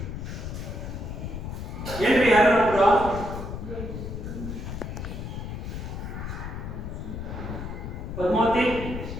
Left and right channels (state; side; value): noise; left; rumble, 6 dB below the sound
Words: ಏನ್ರಿ ಯಾರು ಪದ್ಮಾವತಿ,